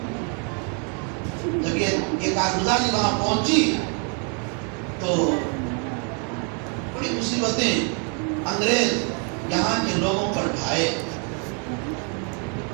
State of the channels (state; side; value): quieter; left; 38.7 dB